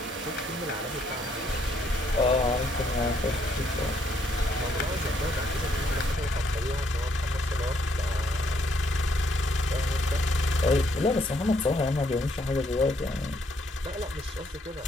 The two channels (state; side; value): normal; both; correlation 0.70